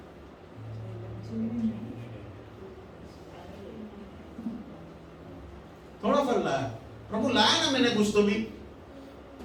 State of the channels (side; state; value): both; identical; correlation 1.00